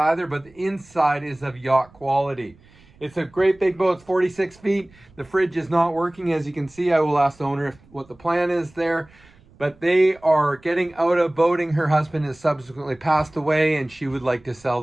but the inside is of yacht quality. It's a great big boat. It's 46 feet. The fridge is not working, as you can see. I will ask the owner what the plan is there, but they are getting out of boating. Her husband has subsequently passed away, and she would like to sell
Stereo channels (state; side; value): noise; right; rumble, 28 dB below the sound